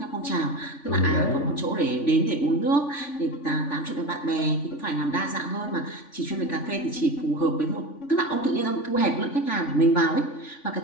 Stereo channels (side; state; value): right; late; 3.5 ms